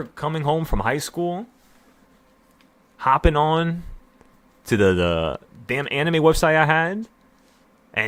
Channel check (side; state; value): both; identical; correlation 1.00